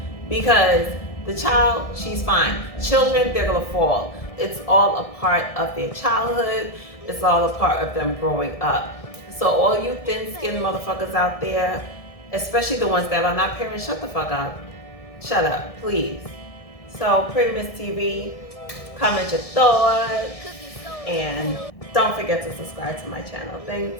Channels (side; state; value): right; late; 1.6 ms